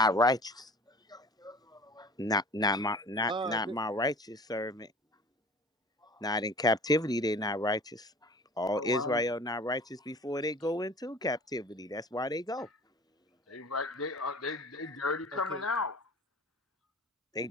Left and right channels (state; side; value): normal; both; correlation 0.44